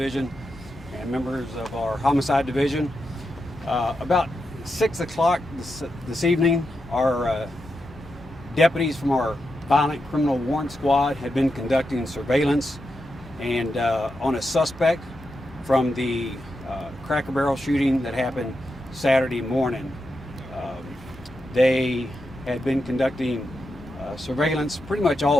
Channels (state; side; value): normal; both; correlation 0.87